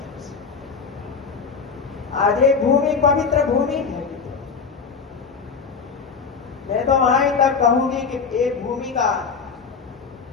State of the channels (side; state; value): right; quieter; 5.5 dB